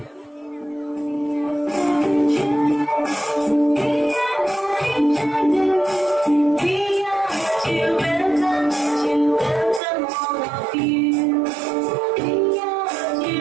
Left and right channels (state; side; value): drops out; left; at 9.8 s